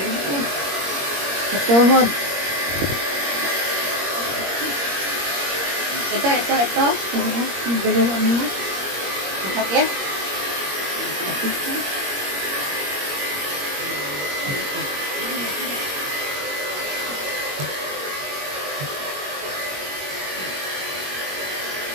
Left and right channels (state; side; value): late; left; 21 ms